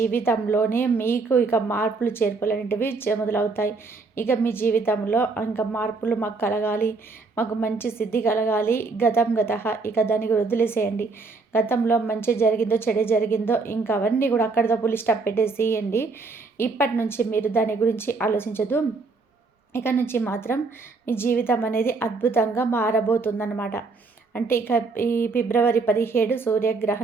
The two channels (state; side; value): quieter; left; 4.1 dB